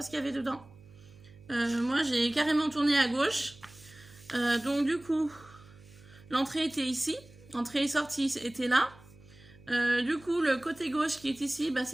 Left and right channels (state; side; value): noise; right; hum, 23 dB below the sound